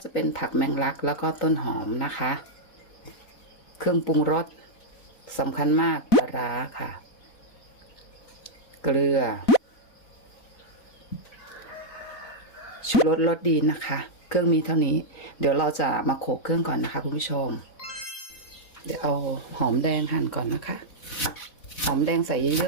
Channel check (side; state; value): right; late; 4.0 ms